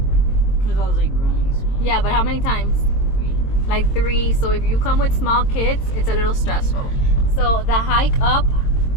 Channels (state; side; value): late; right; 22 ms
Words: Because I was like running small. Yeah, but how many times? 3. Like 3. So if you come with small kids, it's a little stressful. So the hike up,